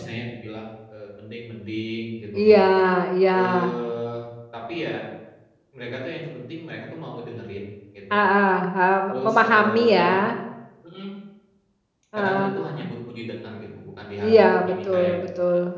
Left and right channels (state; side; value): identical; both; correlation 1.00